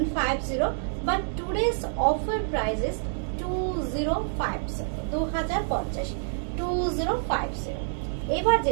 but today's offer price is 2050, 2050। এবার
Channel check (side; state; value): left; silent; digital silence